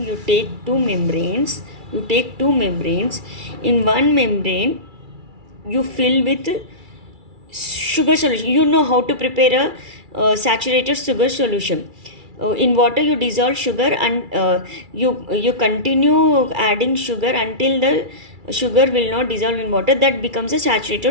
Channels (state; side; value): late; left; 2.3 ms